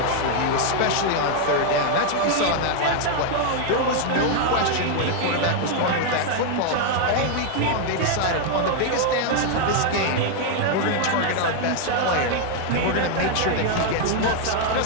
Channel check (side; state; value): both; different; correlation 0.00